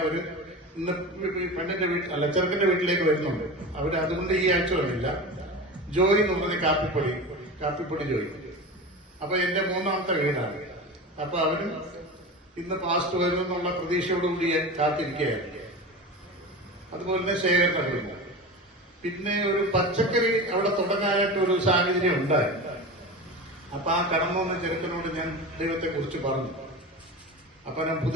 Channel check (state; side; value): normal; both; correlation 0.29